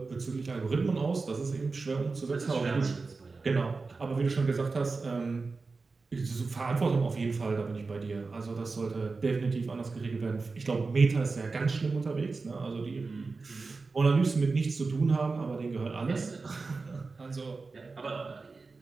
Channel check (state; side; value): quieter; left; 4.1 dB